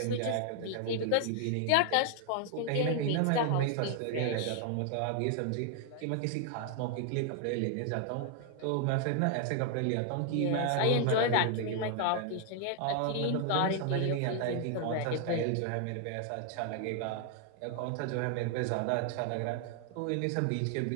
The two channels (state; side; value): different; both; correlation 0.00